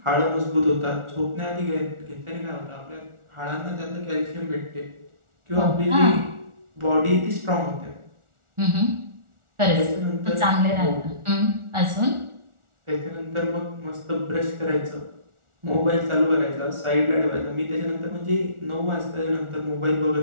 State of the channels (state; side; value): late; left; 1.4 ms